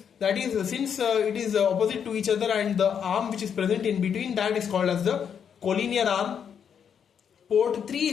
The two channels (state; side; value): quieter; right; 7.7 dB